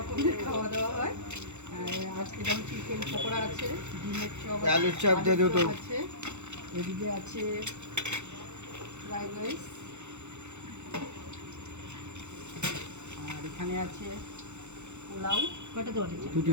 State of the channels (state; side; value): late; left; 0.83 ms